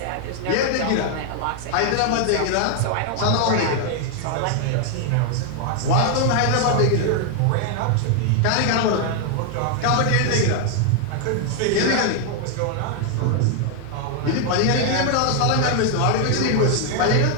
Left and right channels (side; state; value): both; different; correlation 0.00